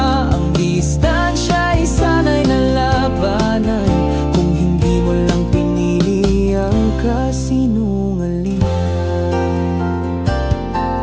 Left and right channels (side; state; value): both; identical; correlation 1.00